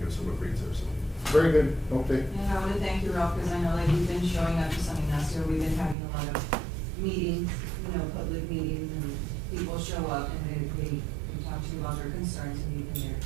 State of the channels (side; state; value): left; drops out; at 6.0 s